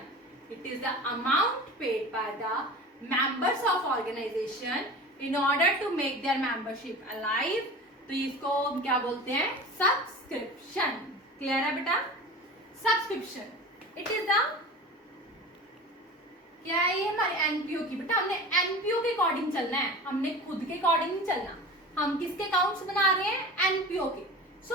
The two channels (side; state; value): both; normal; correlation 0.35